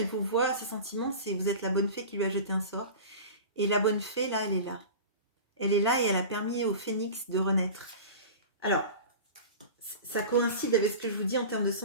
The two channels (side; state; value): both; inverted; correlation -0.34